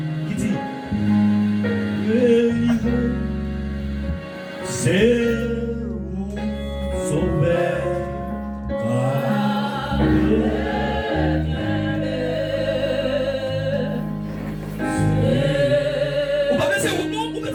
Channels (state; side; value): identical; both; correlation 1.00